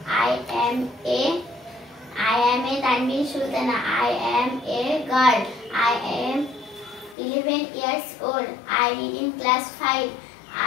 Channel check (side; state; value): right; drops out; at 7.2 s